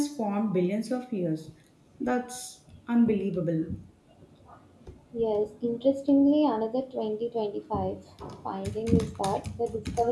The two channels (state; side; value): identical; both; correlation 1.00